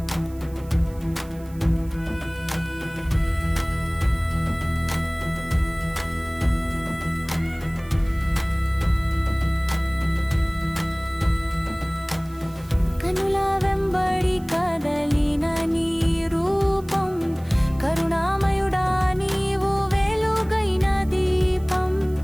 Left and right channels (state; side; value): noise; right; hiss, 25 dB below the sound